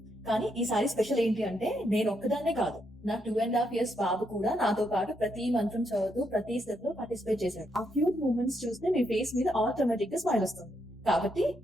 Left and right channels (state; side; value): normal; both; correlation 0.78